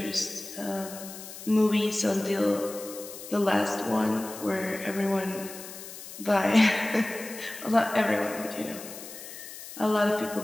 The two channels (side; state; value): left; noise; hiss, 13 dB below the sound